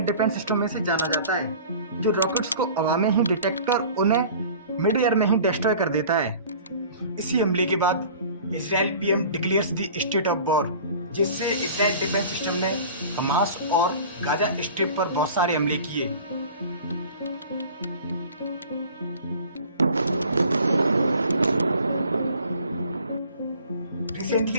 डिफेंस सिस्टम में से जाना जाता है, जो रॉकेट्स को हवा में ही डिटेक्ट कर उन्हें मिड एयर में ही डिस्ट्रॉय कर देता है। इसी हमले के बाद Israel PM declares the state of war, जिससे इजराइल डिफेंस सिस्टम ने हमास और गाजा स्ट्रिप पर बहुत सारे हमले किए।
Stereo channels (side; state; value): both; inverted; correlation -0.44